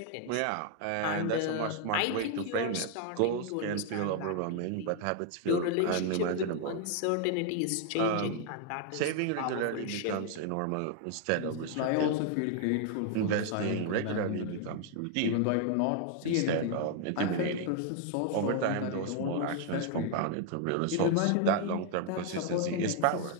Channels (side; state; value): both; different; correlation 0.00